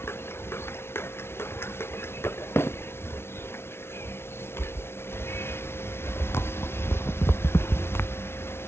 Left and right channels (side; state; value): right; late; 0.12 ms